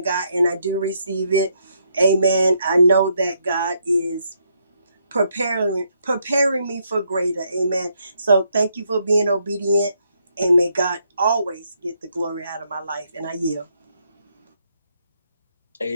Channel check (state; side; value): inverted; both; correlation -0.74